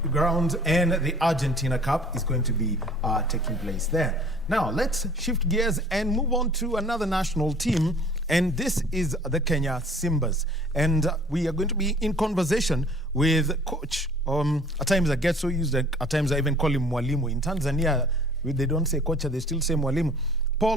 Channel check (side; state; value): both; normal; correlation 0.52